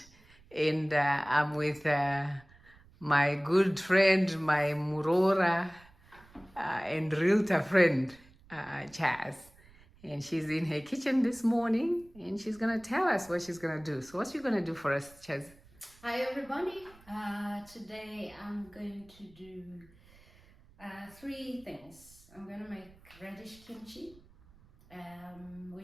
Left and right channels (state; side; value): noise; right; rumble, 26 dB below the sound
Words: And I'm with my good friend, my Murora and realtor friend, Chazz. And she's in her kitchen this morning and she's going to tell us what she's going to do. So, what's she going to do for us, Chazz? Hi, everybody. Today I'm going to do three things. I'm going to make radish kimchi,